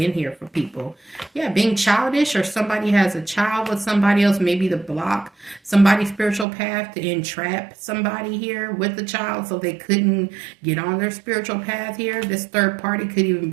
here for people. Yeah, being childish, or somebody has a child with somebody else, maybe to block somebody's spiritual path, to entrap somebody here with the child so they couldn't get on their spiritual path here. This third party could even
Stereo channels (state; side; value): drops out; left; at 6.5 s